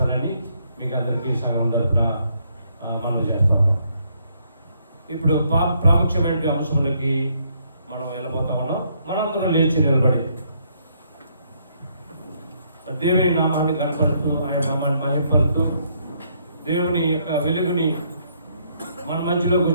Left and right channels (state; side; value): inverted; both; correlation -0.71